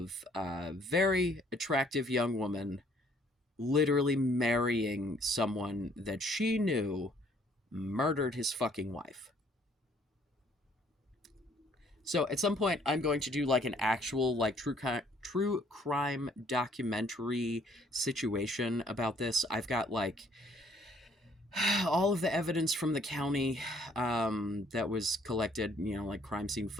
a very attractive young woman literally marrying someone that she knew murdered his fucking wife. So at some point, I'm going to do like an actual like true crime documentary situation about this. I've got like all of the evidence from the county that was collected, you know, like crime scene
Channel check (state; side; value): normal; both; correlation 0.62